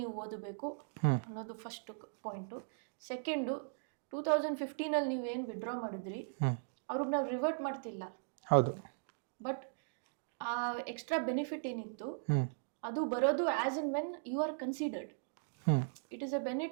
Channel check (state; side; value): silent; left; digital silence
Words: ಓದಬೇಕು ಅನ್ನೋದು ಫಸ್ಟ್ ಪಾಯಿಂಟು. ಸೆಕೆಂಡು, 2015 ನೀವೇನು ವಿಡ್ರಾ ಮಾಡಿದ್ರಿ ಅವ್ರಿಗೆ ನಾವು ರಿವರ್ಟ್ ಮಾಡ್ತಿಲ್ಲ. ಹೌದು. ಬಟ್ ಆ ಎಕ್ಸ್ಟ್ರಾ ಬೆನಿಫಿಟ್ ಏನಿತ್ತು ಅದು ಬರೋದು as and when you are considered. It is a